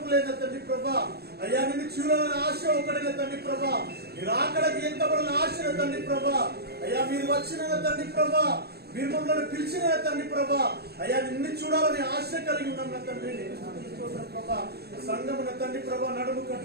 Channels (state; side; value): late; left; 0.47 ms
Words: లేదు తండ్రి ప్రభా. అయ్యా నిన్ను చూడాలని ఆశ ఒకటిన తండ్రి ప్రభా, మీరు ఆకలికి ఎంత పడిన ఆశ తండ్రి ప్రభా. అయ్యా మీరు వచ్చిన తండ్రి ప్రభా, మీరు మమ్మల్ని పిలిచిన తండ్రి ప్రభా. అయ్యా నిన్ను చూడాలని ఆశ కలిగి ఉన్నాం తండ్రి, ప్రభా. సంఘమున తండ్రి ప్రభా నడుము